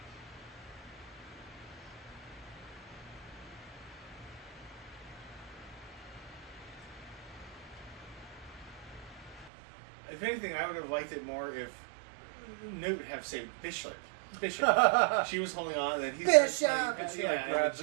If anything, I would have liked it more if Newt would have saved Bishop. Bishop. She was holding on, and then he's Bishop! like, And she, yeah, like, and then grabs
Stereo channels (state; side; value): drops out; left; at 9.5 s